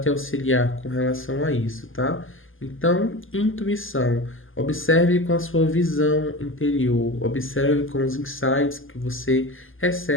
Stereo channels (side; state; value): right; late; 0.59 ms